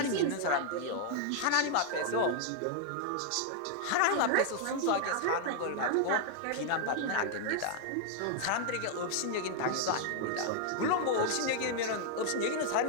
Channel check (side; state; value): both; different; correlation 0.00